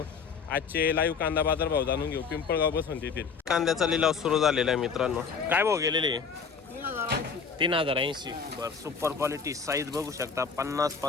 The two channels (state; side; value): quieter; right; 5.8 dB